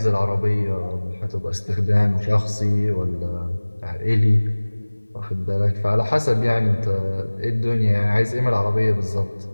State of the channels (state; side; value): inverted; both; correlation -1.00